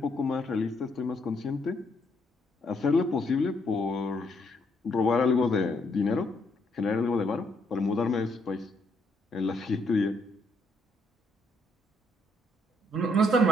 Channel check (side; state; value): both; normal; correlation 0.73